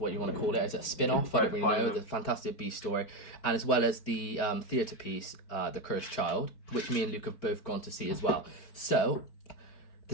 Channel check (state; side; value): late; right; 4.4 ms